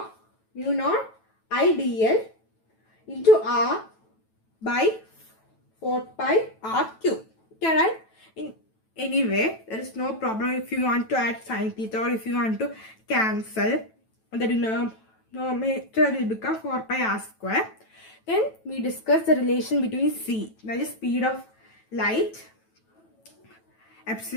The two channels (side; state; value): right; late; 9.1 ms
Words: IDL into R by 4 pi R cube. Okay, right? Anyway, there is no problem if you want to add sin theta or if you want to cancel. The denominator will become 4 pi R square. Then we discuss the relation between C, that is speed of light,